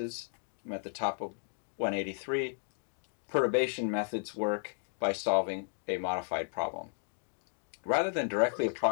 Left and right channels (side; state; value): right; silent; 55 dB below the other